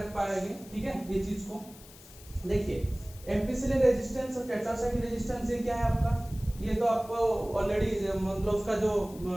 पाएंगे, ठीक है। ये चीज को देखिए, एम्पिसिलिन रेजिस्टेंस और टेट्रासाइक्लिन रेजिस्टेंस ये क्या है आपका, ये तो आपको ऑलरेडी मतलब उसका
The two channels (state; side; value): noise; left; hiss, 20 dB below the sound